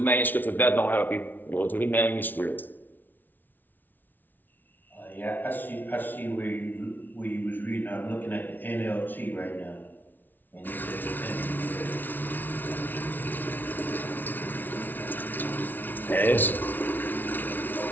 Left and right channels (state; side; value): late; right; 0.087 ms